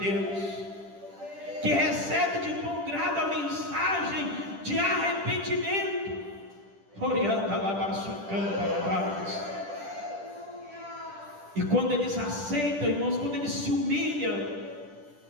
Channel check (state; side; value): late; left; 10 ms